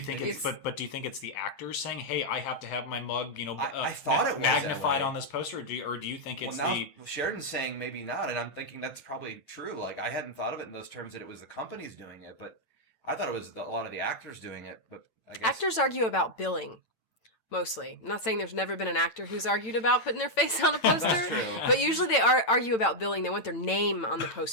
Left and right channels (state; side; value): late; right; 8.9 ms